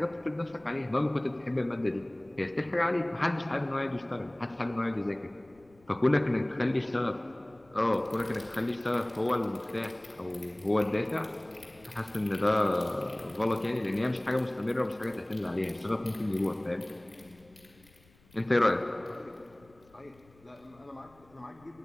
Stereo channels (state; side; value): noise; left; rumble, 29 dB below the sound